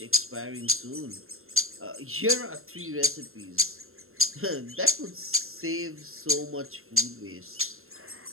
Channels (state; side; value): late; left; 0.61 ms